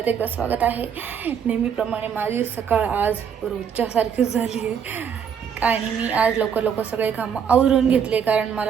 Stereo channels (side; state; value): left; quieter; 7.5 dB